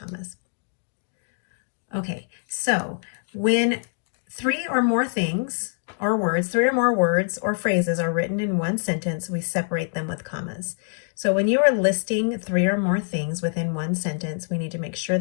Okay, so when three or more things or words, three or more words or phrases are written in one sentence, we separate them with commas. So when you are listing three or more things within one sentence, we need to make sure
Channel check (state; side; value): silent; right; digital silence